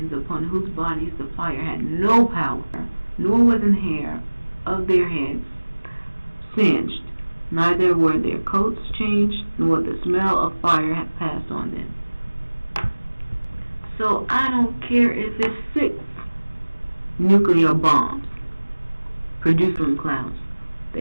upon whose bodies the fire had no power, nor was an hair of their heads singed, neither were their coats changed, nor the smell of fire had passed on them. So I don't care if it's 6 nuclear bombs produced from clouds.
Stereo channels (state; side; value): inverted; both; correlation -1.00